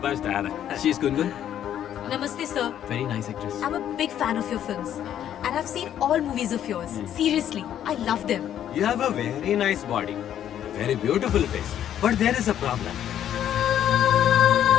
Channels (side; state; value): right; quieter; 10.5 dB